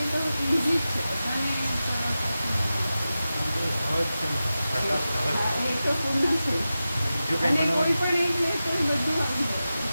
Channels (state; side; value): inverted; both; correlation -0.93